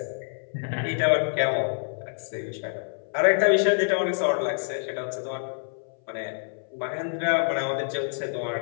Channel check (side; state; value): right; silent; 58 dB below the other